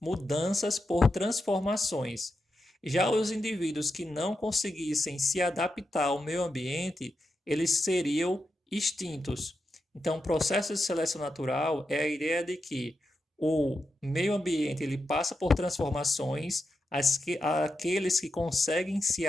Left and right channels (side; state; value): both; normal; correlation 0.87